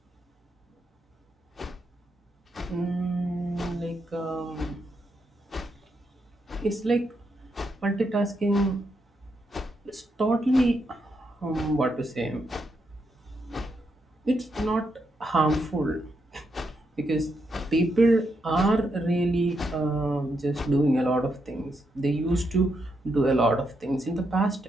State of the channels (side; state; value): both; normal; correlation 0.81